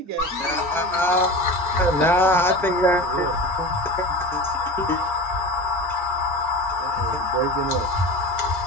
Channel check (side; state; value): both; normal; correlation 0.32